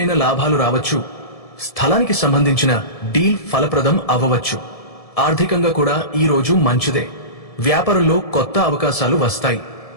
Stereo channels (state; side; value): late; right; 1.7 ms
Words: లాభాలు రావచ్చు. స్థలానికి సంబంధించిన డీల్ ఫలప్రదం అవ్వవచ్చు. ఆర్థికంగా కూడా ఈ రోజు మంచిదే. వ్యాపారంలో కొత్త అవకాశాలు వస్తాయి.